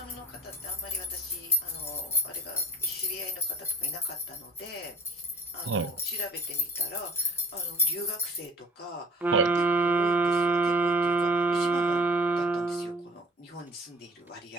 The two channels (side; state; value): both; normal; correlation 0.45